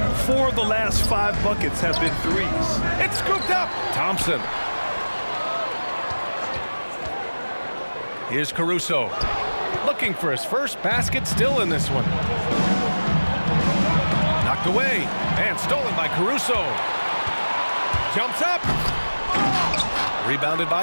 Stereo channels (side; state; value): both; inverted; correlation -1.00